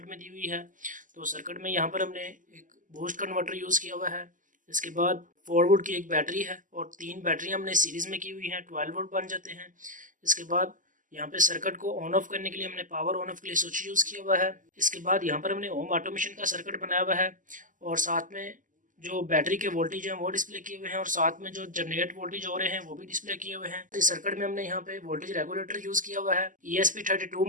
में दी हुई है। तो सर्किट में यहाँ पर हमने एक बूस्ट कन्वर्टर यूज़ किया हुआ है। इसके बाद 4 वोल्ट की एक बैटरी है और 3 बैटरी हमने सीरीज़ में की हुई हैं, 12 वोल्ट बन जाते हैं। इसके बाद यहाँ पे सर्किट को ऑन ऑफ करने के लिए हमने पावर ऑन ऑफ के लिए स्विच यूज़ किया हुआ है। इसके बाद यहाँ पर हमने होम ऑटोमेशन का सर्किट बनाया हुआ है और साथ में जो बैटरी के वोल्टेज हैं वो डिस्प्ले किए हुए हैं और साथ में जो जनरेट वोल्टेज हो रहे हैं वो भी डिस्प्ले किए हुए हैं। इस सर्किट में हमने यहाँ पे वोल्टेज रेगुलेटर यूज़ किया हुआ है, ESP32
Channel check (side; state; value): left; late; 0.38 ms